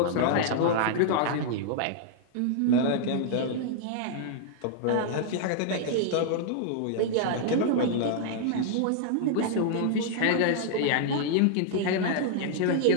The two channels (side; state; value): both; different; correlation -0.01